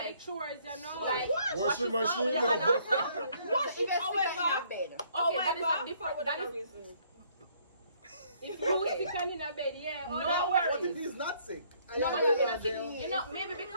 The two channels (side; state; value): both; inverted; correlation -0.64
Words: Like- the chores, you know? Like, Washing wash machine? your hand after. Wash it, it, however. in bed. Okay, that is a However, different. for That whatever is reason. If you sick and in a bed, yeah. Oh, No no worries. What if he's not sick? No, but but you it's know, not you know, maybe